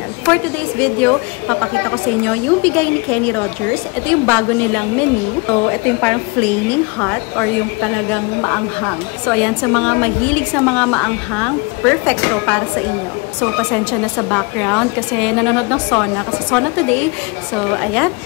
For today's video, papakita ko sa inyo yung bigay ni Kenny Rogers. Ito yung bago nilang menu. So, ito yung parang flaming hot or yung talagang maanghang. So, ayan, sa mga mahilig sa mga maanghang, perfect to para sa inyo. So, pasensya na sa background kasi nanonood ng Sona. Kasi Sona today. So, ayan,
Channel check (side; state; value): right; quieter; 28.4 dB